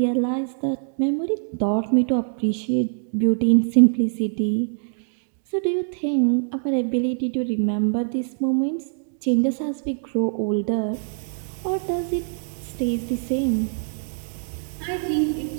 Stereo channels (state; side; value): silent; left; 63 dB below the other